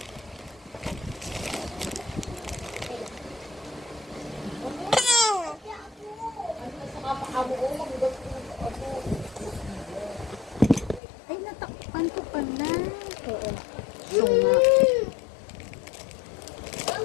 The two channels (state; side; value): drops out; right; at 11.0 s